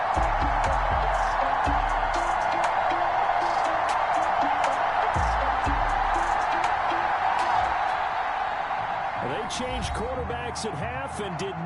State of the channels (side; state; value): both; identical; correlation 1.00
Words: Changed quarterbacks at half and did